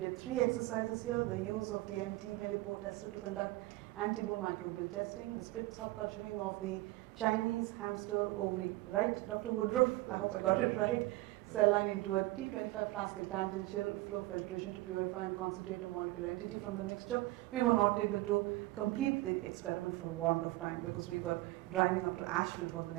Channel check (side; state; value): left; quieter; 19.4 dB